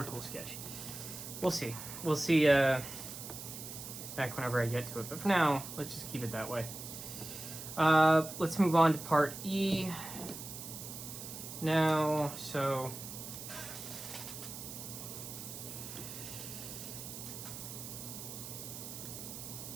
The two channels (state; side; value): noise; right; hiss, 10 dB below the sound